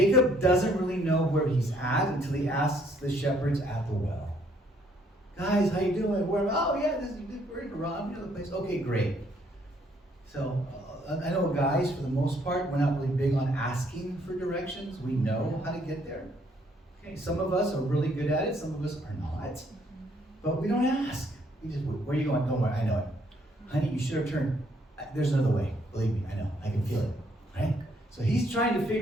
doesn't really know where he's at until he asks the shepherds at the well. Guys, how you doing? We're in Haran, the place. Okay, great. So I know guys, for the most part, we're not really big on asking for directions. We know how to get there. Okay, some of us are really good at it. Some of us are not. But we don't ask. We just, where are you going? Don't worry, I know it. Honey, you should have turned. There's another way. Believe me, I know. I can feel it. Right? So he's trying to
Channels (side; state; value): both; normal; correlation 0.67